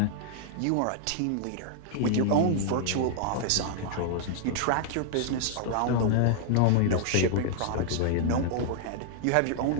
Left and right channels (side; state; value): both; different; correlation -0.01